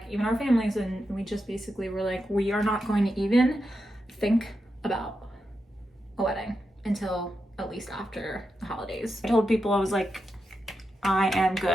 even our families, and we just basically were like, we are not going to even think about a wedding until at least after the holidays. I told people, I was like, I am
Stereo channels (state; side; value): normal; both; correlation 0.87